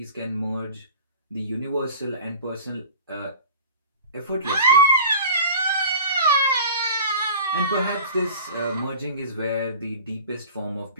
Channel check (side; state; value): both; inverted; correlation -0.41